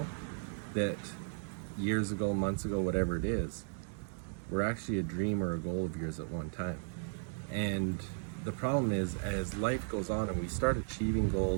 that years ago, months ago, whatever it is, were actually a dream or a goal of yours at one time. And the problem is, as life goes on and we start achieving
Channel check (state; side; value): silent; left; digital silence